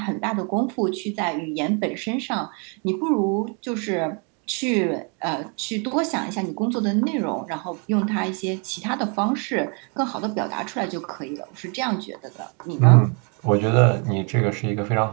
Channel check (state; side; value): quieter; left; 36.6 dB